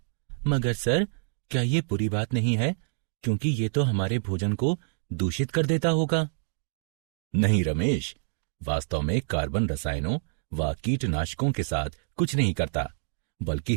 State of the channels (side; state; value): left; silent; digital silence